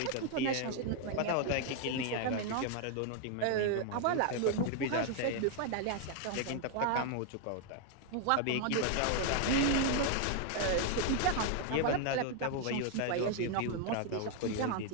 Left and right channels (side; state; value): both; different; correlation 0.01